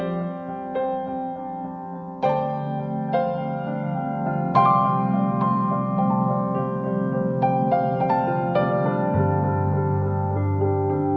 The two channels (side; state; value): both; identical; correlation 1.00